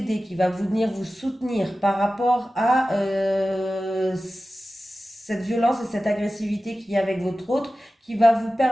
qui va venir vous soutenir par rapport à cette violence et cette agressivité qu'il y a avec votre autre, qui va vous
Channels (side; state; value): both; normal; correlation 0.95